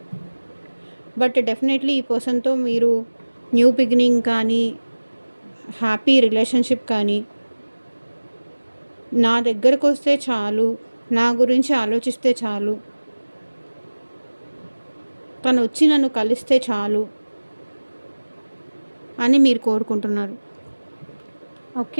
బట్ డెఫినెట్లీ ఈ పర్సన్తో మీరు న్యూ బిగినింగ్ కానీ, హ్యాపీ రిలేషన్షిప్ కానీ, నా దగ్గరకు వస్తే చాలు, నా గురించి ఆలోచిస్తే చాలు, తను వచ్చి నన్ను కలిస్తే చాలు అని మీరు కోరుకుంటున్నారు.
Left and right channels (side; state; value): both; inverted; correlation -1.00